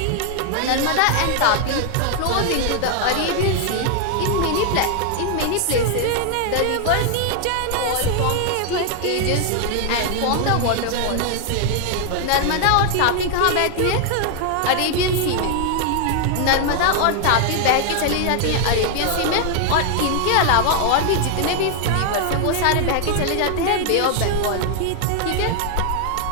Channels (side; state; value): both; different; correlation 0.00